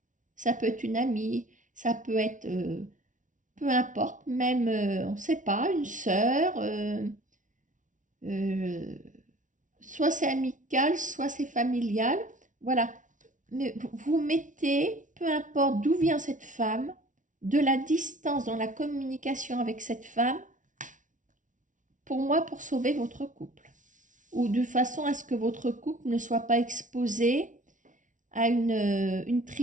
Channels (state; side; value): late; left; 0.37 ms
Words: Ça peut être une amie, ça peut être, peu importe, même, on ne sait pas, une sœur, euh, soit c'est amical, soit c'est familial. Voilà, mais vous mettez, peu importe d'où vient cette femme, de la distance dans la communication avec cette femme, pour moi, pour sauver votre couple. Ou de façon à ce que votre couple ne soit pas exposé à une